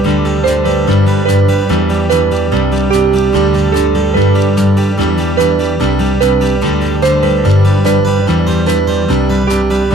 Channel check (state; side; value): normal; both; correlation 0.63